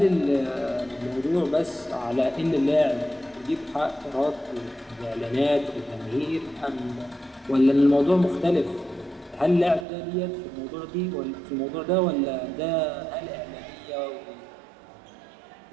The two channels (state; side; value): drops out; left; at 9.9 s